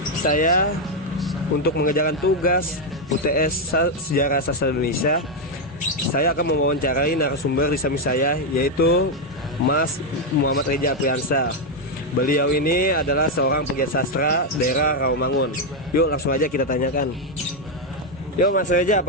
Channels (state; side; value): normal; both; correlation 0.03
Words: saya untuk mengerjakan tugas UTS Sejarah Sastra Indonesia, saya akan mewawancarai narasumber di samping saya, yaitu Mas Muhammad Reja Apriansa. Beliau ini adalah seorang pegiat sastra daerah Rawamangun. Yuk langsung aja kita tanyakan. Yuk Mas Reja,